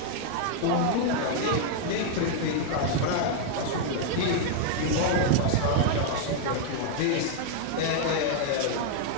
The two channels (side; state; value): both; different; correlation 0.00